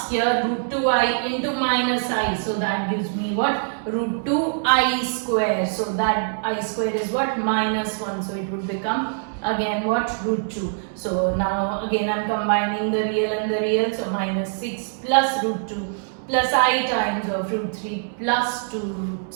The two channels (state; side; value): silent; left; digital silence